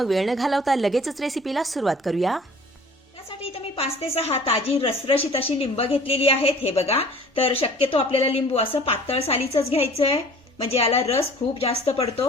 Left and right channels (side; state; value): both; normal; correlation 0.48